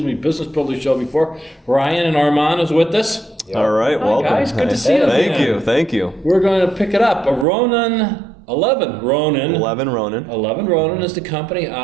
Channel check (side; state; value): left; drops out; at 7.5 s